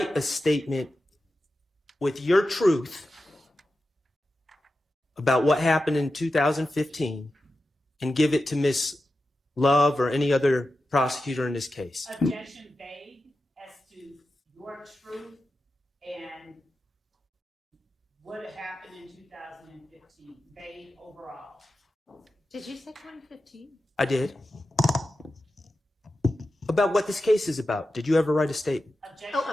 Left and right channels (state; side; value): normal; both; correlation 0.92